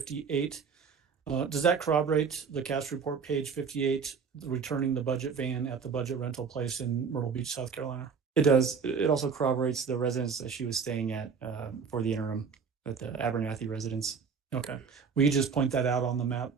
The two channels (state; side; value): quieter; left; 5.9 dB